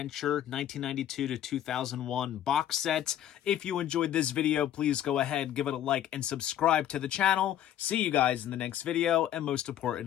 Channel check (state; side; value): quieter; right; 11.3 dB